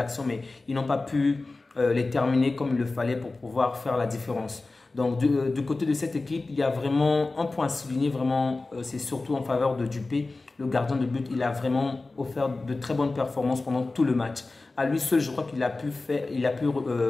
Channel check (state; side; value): quieter; right; 3.4 dB